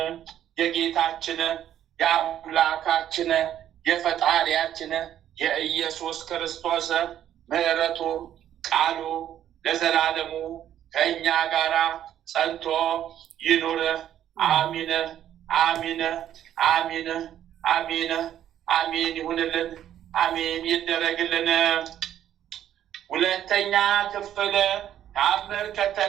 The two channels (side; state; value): left; quieter; 10.9 dB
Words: የጌታችን የአምላካችን የፈጣሪያችን የኢየሱስ ክርስቶስ ምሕረቱ ቃሉ ለዘላለሙ ከእኛ ጋር ጸንቶ ይኑር። አሚን አሚን አሚን አሚን አሚን ይሁንልን። አሚን ይደረግልን። ሁለተኛ ክፍል ተአምር